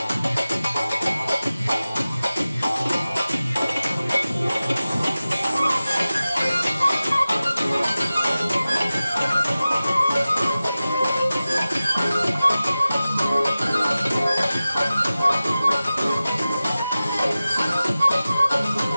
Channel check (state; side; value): inverted; both; correlation -0.96